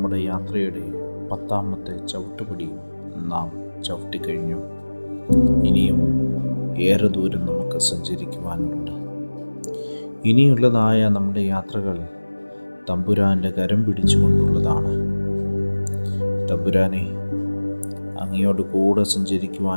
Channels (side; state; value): both; inverted; correlation -1.00